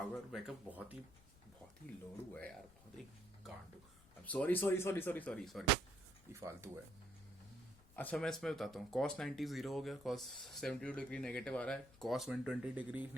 बैकअप बहुत ही लोड़ू है यार, बहुत ही कांडू। Sorry sorry sorry sorry sorry sorry, ये फालतू है। अच्छा मैं इसमें बताता हूँ, cos 90 जीरो हो गया, cos 72 डिग्री नेगेटिव आ रहा है, cos 120 डिग्री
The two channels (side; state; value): left; noise; rumble, 24 dB below the sound